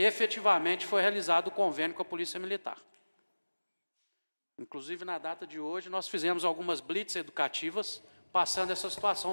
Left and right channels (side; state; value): both; inverted; correlation -1.00